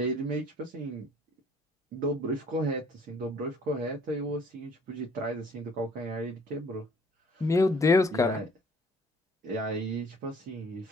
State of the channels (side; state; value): both; normal; correlation 0.57